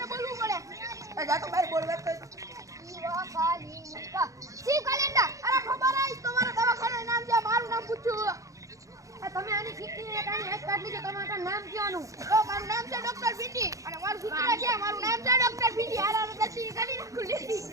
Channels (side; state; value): left; late; 0.16 ms